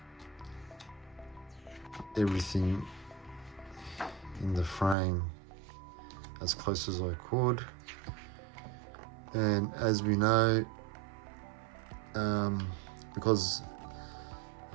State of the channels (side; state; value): left; drops out; at 5.0 s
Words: everything in the frame as close as I could. And as we know, because